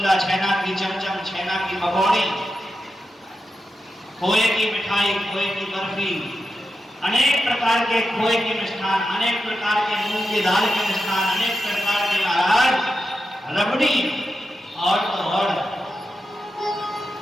छेना की चमचम, छेना की पकौड़ी, खोए की मिठाई, खोए की बर्फी, अनेक प्रकार के खोए के मिष्ठान, अनेक प्रकार के मूंग की दाल के मिष्ठान, अनेक प्रकार के महाराज रबड़ी, और तो और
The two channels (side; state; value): both; normal; correlation 0.89